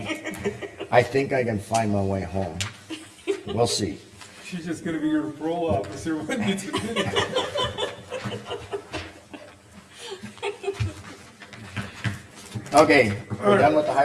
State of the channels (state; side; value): identical; both; correlation 1.00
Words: I think I can find my way home. We'll see. She's just gonna be your parole officer when you do it. Okay, we're done with the